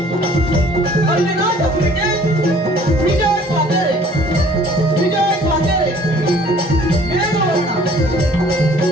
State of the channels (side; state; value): both; normal; correlation 0.54